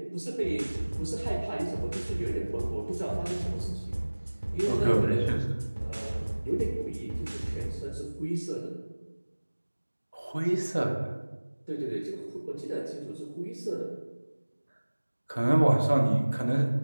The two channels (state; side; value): inverted; both; correlation -1.00